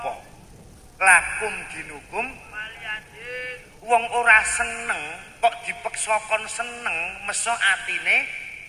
Lakum dinukum wong ora seneng kok dipeksa kon seneng, meso atine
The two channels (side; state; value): both; identical; correlation 1.00